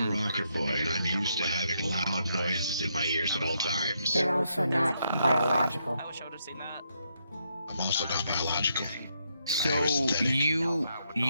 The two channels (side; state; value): both; inverted; correlation -0.78